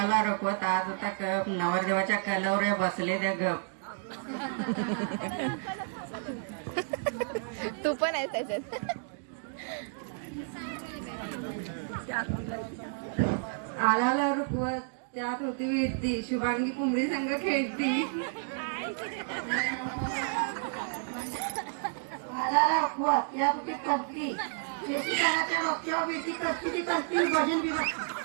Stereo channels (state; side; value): silent; left; digital silence